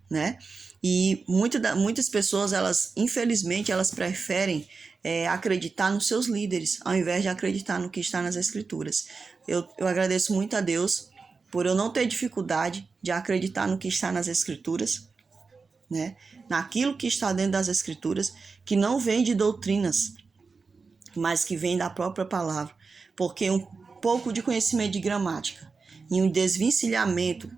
né? E muitas pessoas, infelizmente, elas preferem acreditar nos seus líderes, ao invés de acreditar no que está nas Escrituras. Eu agradeço muito a Deus por eu não ter dificuldade de acreditar no que está nas Escrituras, né? Naquilo que está dentro das Escrituras, que não vem de doutrinas, mas que vem da própria palavra. Porque um pouco de conhecimento de gramática e um desvencilhamento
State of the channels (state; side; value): quieter; left; 4.6 dB